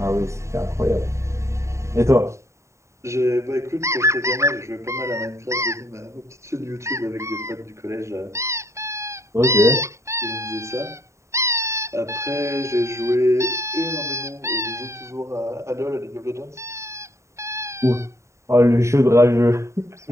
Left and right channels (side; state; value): left; late; 0.14 ms